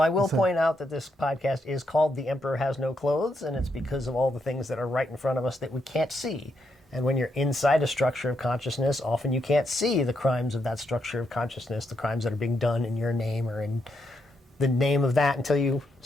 I will point out that this podcast is called The Emperor Has No Clothes, and it's because of all the things that are right in front of us that we can't see. And when you're inside a structure of consciousness, often you can't see the crimes of that structure of consciousness, the crimes that are being done in your name or in the name of that until you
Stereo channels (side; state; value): both; normal; correlation 0.80